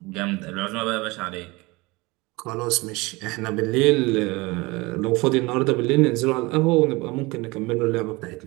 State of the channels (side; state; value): left; quieter; 23.6 dB